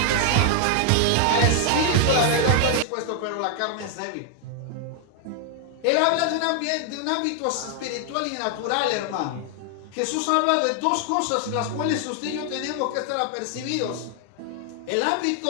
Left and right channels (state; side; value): different; both; correlation 0.00